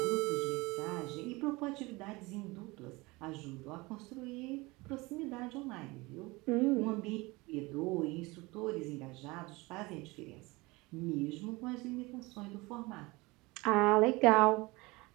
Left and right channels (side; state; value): left; quieter; 23.3 dB